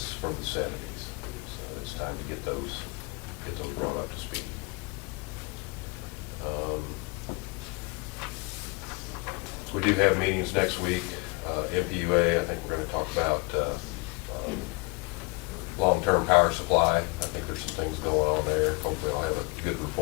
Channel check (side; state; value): right; quieter; 28.6 dB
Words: from the 70s, so it's time to get those brought up to speed. We do have meetings next week. MPUA, I think we're going to talk about long-term power supply. I think there's some things going on there. Hopefully I'll have a good